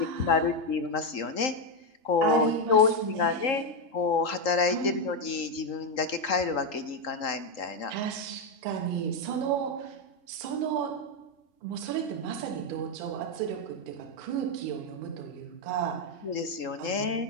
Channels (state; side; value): late; right; 3.8 ms